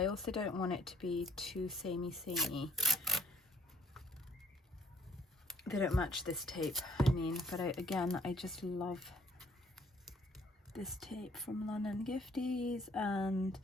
also don't want it to be too samey. They don't match this tape, I mean, but again, I just love this tape from London Gifties. And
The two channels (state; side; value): normal; both; correlation 0.61